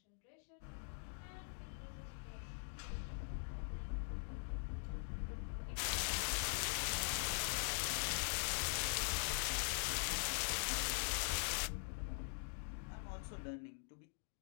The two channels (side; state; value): right; silent; digital silence